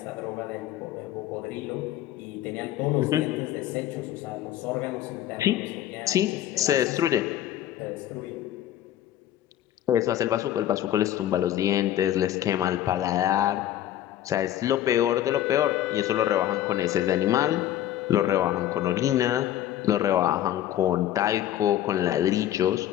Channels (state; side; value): quieter; right; 12.2 dB